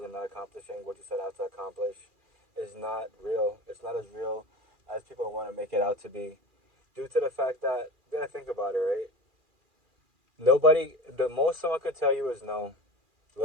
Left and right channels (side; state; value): left; late; 2.4 ms